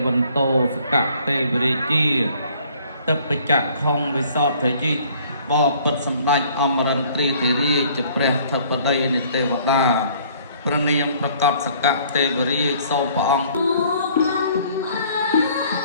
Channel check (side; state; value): both; inverted; correlation -0.57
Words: វន្តោសកទេវរាជាទឹកបច្ចៈខុងវិសោធយិបបិទ្ធសម្ដេចអមរិន្ទ្រាធិរាជជាព្រះធិបតីនៃទេវតាព្រះនាមប្រកបសកទេវរាជសូមព្រះអង្គ